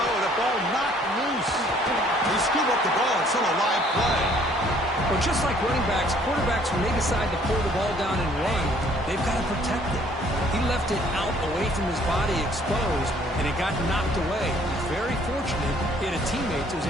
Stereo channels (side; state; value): both; normal; correlation 0.60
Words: The ball knocked loose. They scoop up the ball. It's still a live play. Well, just like running backs, quarterbacks, when they decide to pull the ball down and run, they've got to protect it. He left it out away from his body exposed, and it got knocked away. He's very fortunate he had a teammate who was